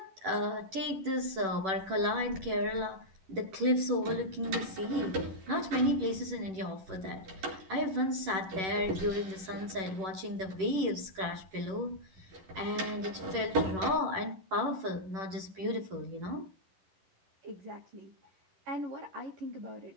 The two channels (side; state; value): left; late; 11 ms